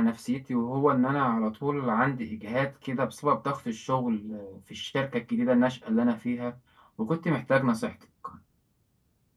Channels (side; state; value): both; identical; correlation 1.00